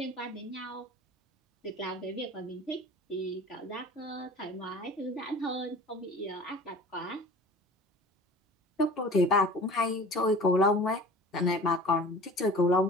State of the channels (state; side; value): normal; both; correlation 0.42